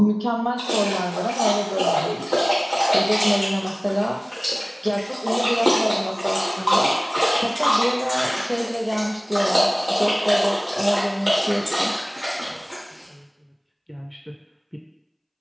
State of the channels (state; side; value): identical; both; correlation 1.00